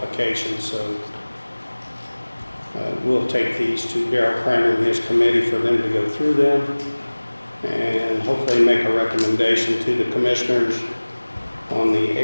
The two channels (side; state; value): both; inverted; correlation -1.00